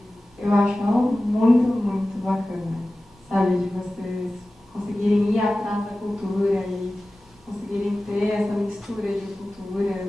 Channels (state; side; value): normal; both; correlation 0.96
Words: eu acho ela muito, muito bacana, sabe? De vocês conseguirem ir atrás da cultura e conseguirem ter essa mistura de culturas